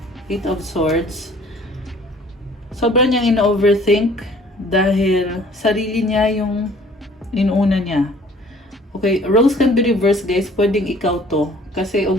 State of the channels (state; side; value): normal; both; correlation 0.54